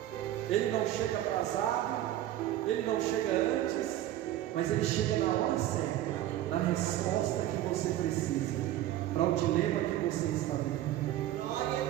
Ele não chega atrasado, Ele não chega antes, mas Ele chega na hora certa, na resposta que você precisa, para o dilema que você está vivendo. Glória a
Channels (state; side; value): quieter; left; 13.4 dB